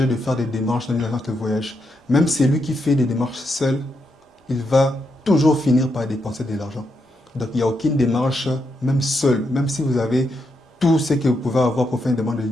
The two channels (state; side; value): normal; both; correlation 0.82